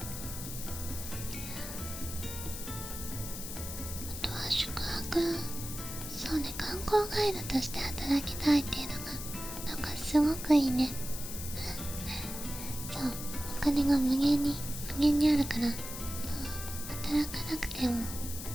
あとは宿泊、そうね、観光ガイドとして働きたいっていうのがなんかすごくいいね。そう、お金が無限にあるから、もう働かなくても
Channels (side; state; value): left; noise; hiss, 8 dB below the sound